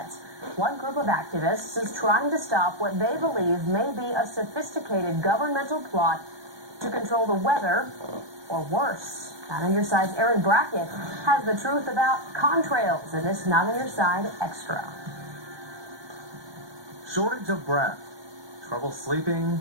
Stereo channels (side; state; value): left; late; 1.2 ms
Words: One group of activists is trying to stop what they believe may be a sophisticated governmental plot to control the weather, or worse. Not on Your Side's Aaron Brackett has the truth about contrails in this Not on Your Side Extra. Shortage of breath, trouble sleeping,